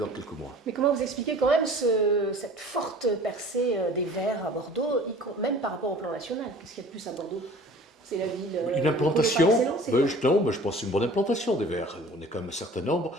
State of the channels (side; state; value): both; normal; correlation 0.46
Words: dans quelques mois. Mais comment vous expliquez quand même cette forte percée des Verts à Bordeaux, même par rapport au plan national? Qu'est-ce qu'il y a de plus à Bordeaux? C'est la ville. Une implantation, non, je pense une bonne implantation des Verts. On est quand même un certain nombre